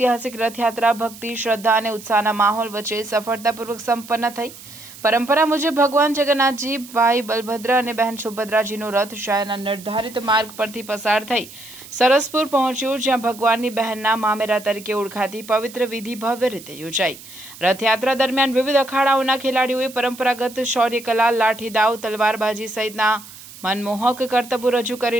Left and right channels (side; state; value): right; noise; hiss, 17 dB below the sound